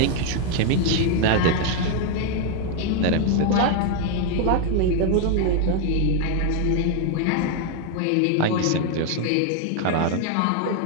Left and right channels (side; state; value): both; different; correlation 0.00